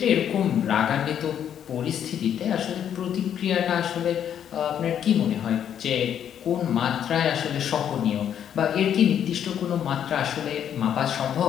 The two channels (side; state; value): right; quieter; 9.3 dB